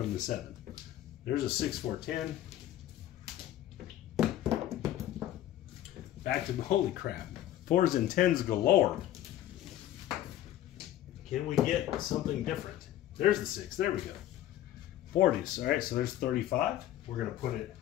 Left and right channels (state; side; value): quieter; right; 12.8 dB